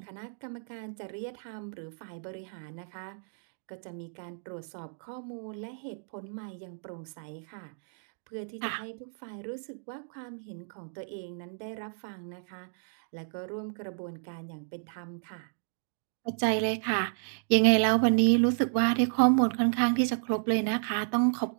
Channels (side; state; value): left; silent; digital silence